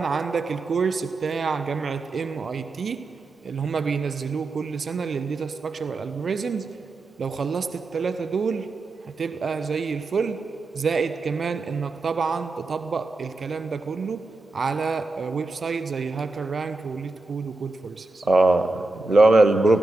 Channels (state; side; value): quieter; left; 3.3 dB